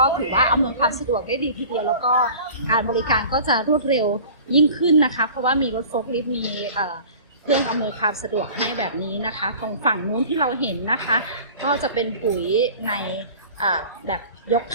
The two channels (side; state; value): both; inverted; correlation -0.43